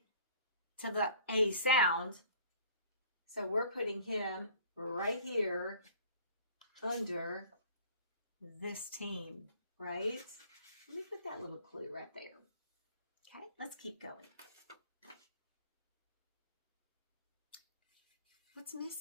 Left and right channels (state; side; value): inverted; both; correlation -0.50